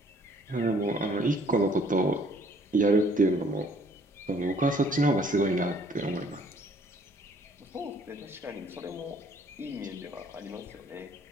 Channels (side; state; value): both; normal; correlation 0.59